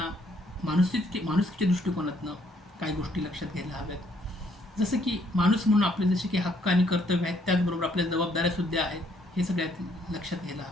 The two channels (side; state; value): both; normal; correlation 0.68